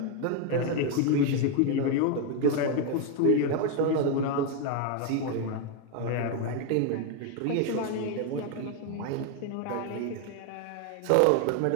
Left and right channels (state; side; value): different; both; correlation 0.01